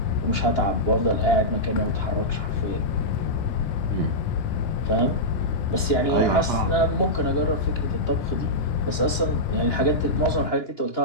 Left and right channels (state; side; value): late; right; 2.9 ms